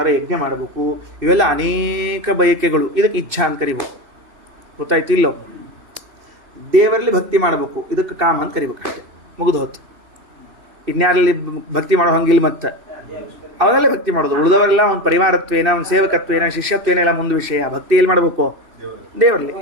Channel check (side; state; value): left; late; 2.7 ms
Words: ಯಜ್ಞ ಮಾಡಬೇಕು, ಇವೆಲ್ಲ ಅನೇಕ ಬಯಕೆಗಳು. ಇದಕ್ಕೆ ಇಚ್ಛಾ ಅಂತ ಕರಿಬೇಕು. ಗೊತ್ತಾಯ್ತು ಇಲ್ಲೋ? ದೇವರಲ್ಲಿ ಭಕ್ತಿ ಮಾಡಬೇಕು, ಇದಕ್ಕೆ ಕಾಮ ಅಂತ ಕರಿಬೇಕು. ಅಷ್ಟೇ, ಮುಗಿದು ಹೊತ್ತು. ಇನ್ಯಾರಲ್ಲಿ ಭಕ್ತಿ ಮಾಡೋ ಹಂಗಿಲ್ಲ. ಮತ್ತೆ ಅವರಲ್ಲೇ ಭಕ್ತಿ ಮಾಡೋದು. ಉಳಿದವರೆಲ್ಲ ಒಂದು ಪರಿವಾರತ್ವೇನ, ಒಂದು ಸೇವಕತ್ವೇನ, ಶಿಷ್ಯತ್ವೇನ ಎಲ್ಲ ಮುಂದೆ ವಿಷಯ. ಭಕ್ತಿ ಎಲ್ಲಿ ಮಾಡಬೇಕು? ದೇವರಲ್ಲಿ.